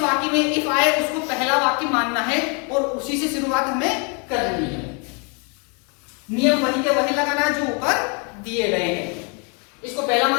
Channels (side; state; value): right; quieter; 35.4 dB